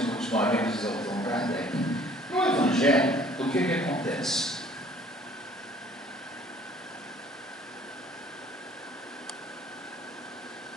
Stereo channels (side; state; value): both; normal; correlation 0.55